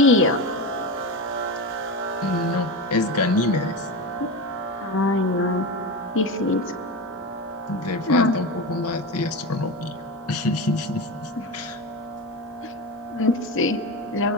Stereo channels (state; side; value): normal; both; correlation 0.21